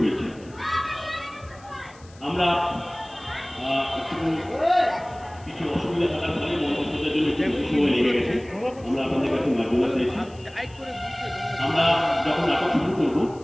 আমরা কিছু অসুবিধা থাকার ফলে মঞ্চ সজ্জার জন্য কিছু সময় লেগে গেছে। আমরা আপনাদের কাছে মার্জনা চাইছি। আমরা যখন নাটক শুরু করব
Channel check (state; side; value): noise; left; hiss, 26 dB below the sound